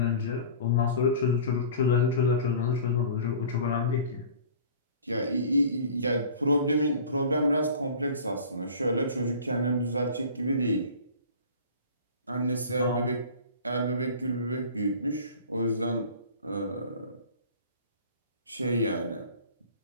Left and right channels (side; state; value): both; inverted; correlation -0.43